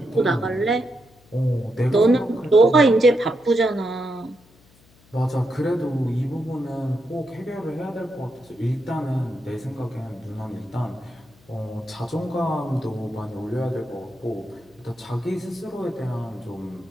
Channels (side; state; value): left; noise; hum, 29 dB below the sound